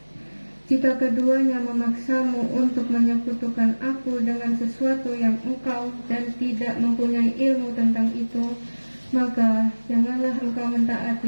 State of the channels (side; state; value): both; inverted; correlation -1.00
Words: Jika keduanya memaksamu untuk menyekutukan aku dengan sesuatu yang engkau dan tidak mempunyai ilmu tentang itu, maka janganlah engkau